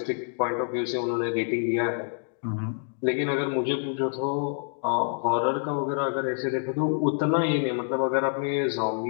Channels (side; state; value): right; silent; digital silence